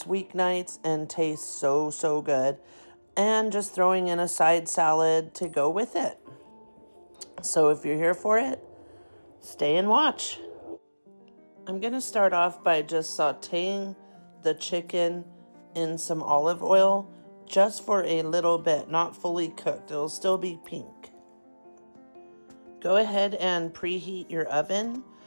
weeknights and tastes so good, and just throwing in a side salad to go with it. So if you're here for it, stay and watch. I'm going to start off by just sauteing the chicken in some olive oil just for a little bit, not fully cooked. It'll still be pink. Go ahead and preheat your oven.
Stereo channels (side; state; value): both; inverted; correlation -1.00